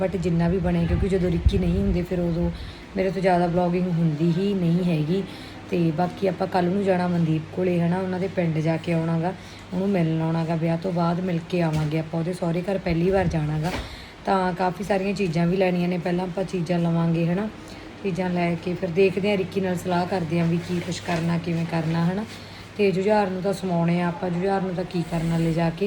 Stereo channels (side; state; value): both; identical; correlation 1.00